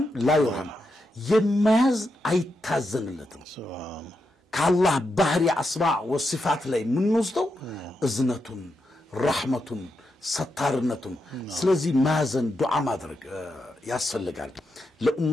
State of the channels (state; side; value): normal; both; correlation 0.85